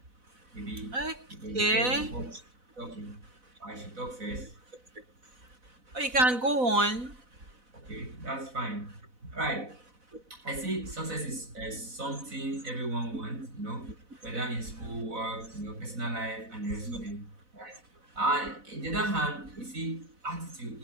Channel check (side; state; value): left; late; 4.0 ms